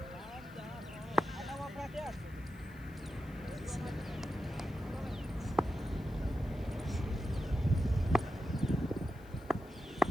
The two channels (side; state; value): left; noise; hiss, 27 dB below the sound